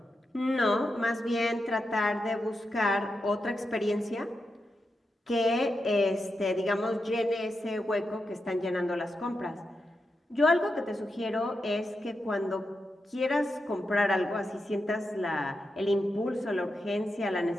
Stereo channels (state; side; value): normal; both; correlation 0.87